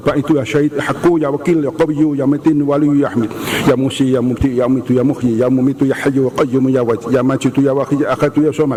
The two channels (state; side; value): identical; both; correlation 1.00